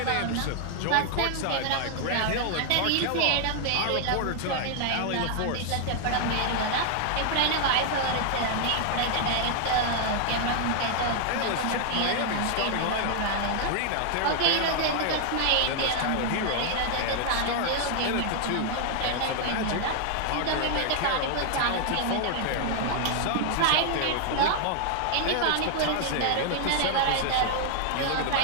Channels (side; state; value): both; different; correlation 0.00